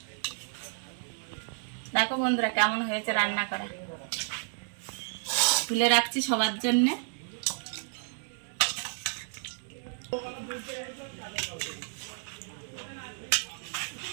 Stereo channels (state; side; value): silent; left; 57 dB below the other